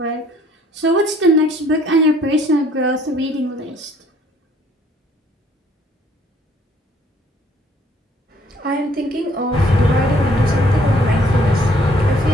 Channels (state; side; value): normal; both; correlation 0.61